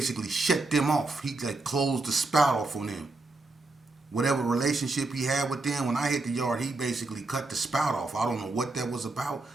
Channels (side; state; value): left; quieter; 3.2 dB